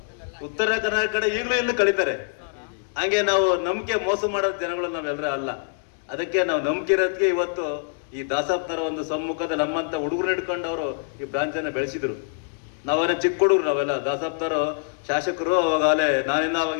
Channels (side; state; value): right; silent; digital silence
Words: ಉತ್ತರ ಕರ್ನಾಟಕ ಕಡೆ ಈಗಲೂ ಇಲ್ಲಿ ಕರೀತಾರೆ. ಹಾಗೆ ನಾವು ನಂಬಿಕೆ ಮೋಸ ಮಾಡೋ ಜನಗಳು ನಾವೆಲ್ಲರೂ ಅಲ್ಲ. ಅದಕ್ಕೆ ನಾವು ನಂಬಿಕೆ ಇರೋದಕ್ಕೆ ಇವತ್ತು ಈ ದಾಸಪ್ಪನವರ ಒಂದು ಸಮ್ಮುಖದ ನಮ್ಮಂತ ಹುಡುಗರು ಹಿಡ್ಕೊಂಡು ಅವರು ಈ ಬ್ರಾಂಚ್ ಅನ್ನ ಬೆಳೆಸಿದ್ರು. ನಾವೇನ ಚಿಕ್ಕ ಹುಡುಗರು, ನಾವೆಲ್ಲ ದಾಸಪ್ಪನವರು ಶಾಸಕರು.